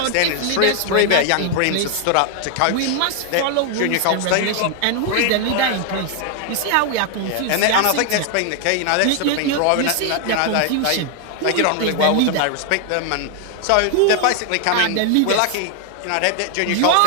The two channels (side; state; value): both; different; correlation 0.00